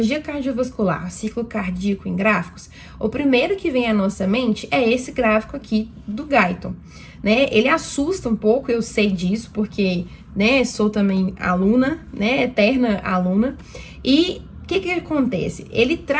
cardiovascular, ciclo cardíaco em gráficos, o primeiro que vem à nossa mente é esse gráfico aqui do Guyton, né? Ele assusta um pouco, eu sei disso, porque, né, sou também aluna, né, eterna aluna. E o que acontece? Ele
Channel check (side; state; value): both; identical; correlation 1.00